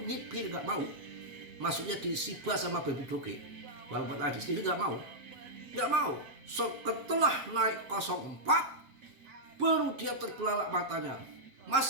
nyipir nggak mau. Masuknya di Shiba sama Baby Doge, walaupun adik sendiri nggak mau. So setelah naik 04 baru dia terbelalak matanya. Mas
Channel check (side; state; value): left; late; 7.5 ms